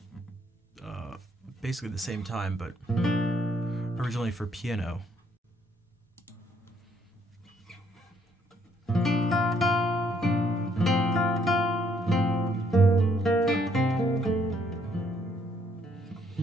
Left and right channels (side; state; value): both; normal; correlation 0.68